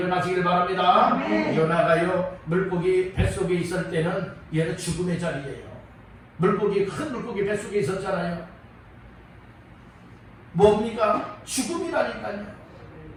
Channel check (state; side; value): identical; both; correlation 1.00